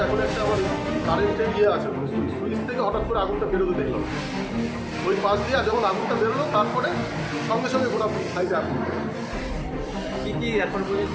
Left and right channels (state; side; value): identical; both; correlation 1.00